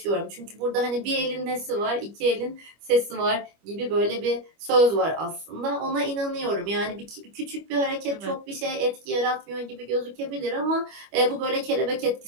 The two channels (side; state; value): left; late; 25 ms